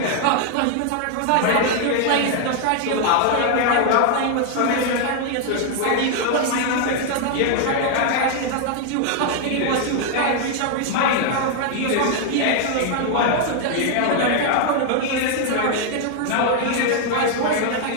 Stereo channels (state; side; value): different; both; correlation 0.00